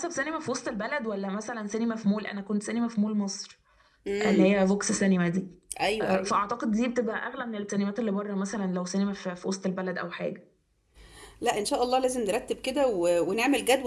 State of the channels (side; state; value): both; identical; correlation 1.00